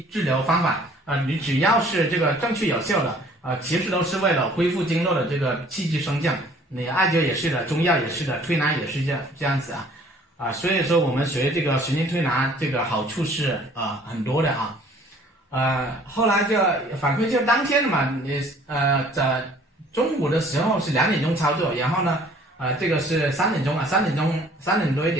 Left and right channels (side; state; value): both; normal; correlation 0.55